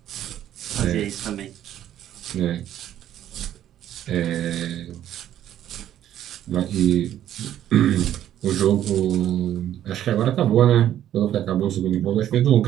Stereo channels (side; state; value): left; quieter; 11.5 dB